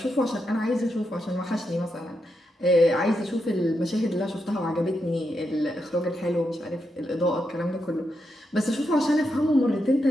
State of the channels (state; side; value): normal; both; correlation 0.84